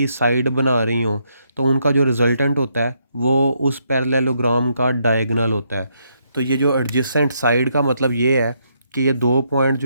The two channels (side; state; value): both; inverted; correlation -0.76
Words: साइड बना रही हों, तो उनका जो रिजल्टेंट होता है वो उस पैरेललोग्राम का डायगोनल होता है। तो ये जो एडजेसेंट साइड का मतलब ये है कि ये दो पॉइंट